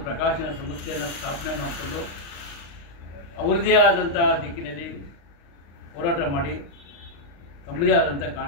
ಪ್ರಕಾಶನ ಸಂಸ್ಥೆಯನ್ನು ಸ್ಥಾಪನೆ ಮಾಡಿಕೊಂಡು ಅವರದೇ ಆದಂಥ ದಿಕ್ಕಿನಲ್ಲಿ ಹೋರಾಟ ಮಾಡಿ ತಮ್ಮದೇ ಆದಂಥ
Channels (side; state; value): right; late; 35 ms